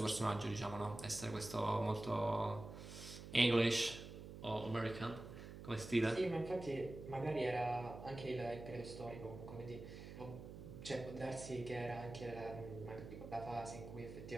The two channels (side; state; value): right; noise; hum, 11 dB below the sound